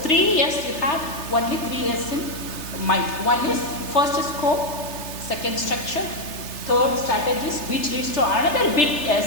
years you have only 3 years in mind. One is first is scope, second structure, third strategies, which leads to another big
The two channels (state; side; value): late; right; 3.3 ms